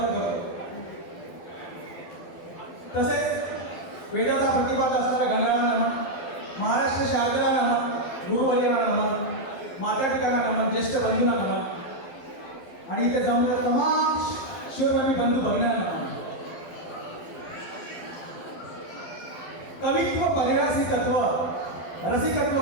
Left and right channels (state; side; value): late; right; 12 ms